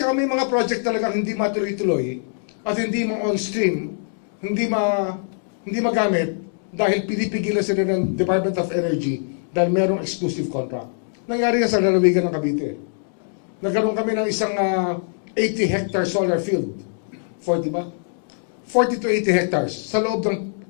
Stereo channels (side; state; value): right; silent; digital silence